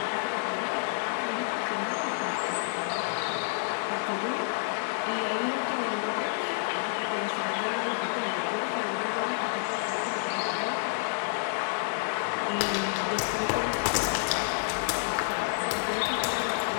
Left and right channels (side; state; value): right; silent; digital silence